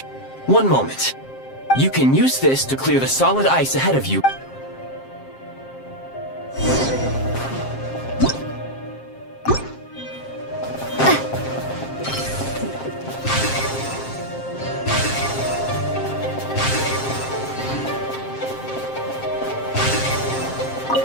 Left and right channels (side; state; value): right; late; 7.5 ms